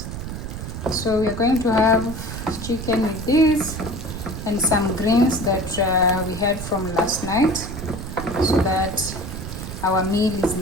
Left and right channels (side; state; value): right; noise; rumble, 7 dB below the sound